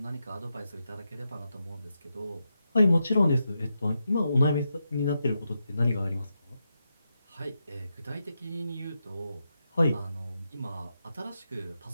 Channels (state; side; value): inverted; both; correlation -0.86